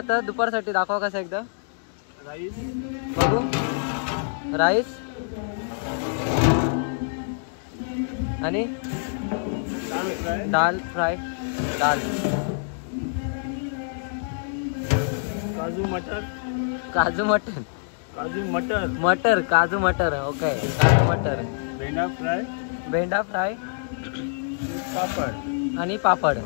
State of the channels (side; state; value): right; silent; digital silence